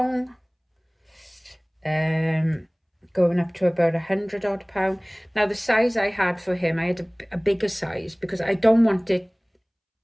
Going up to about £100 odd. Now the size I had for him, I had a bigger size because I don't want it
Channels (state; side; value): identical; both; correlation 1.00